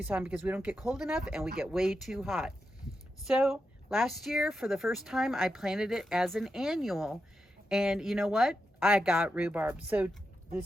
because we don't get cold enough and we get way too hot. So last year, for the first time, I planted it as an annual, and you know what? I got rhubarb. So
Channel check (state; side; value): normal; both; correlation 0.87